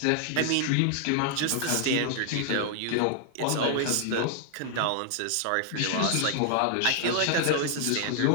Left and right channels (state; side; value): different; both; correlation 0.00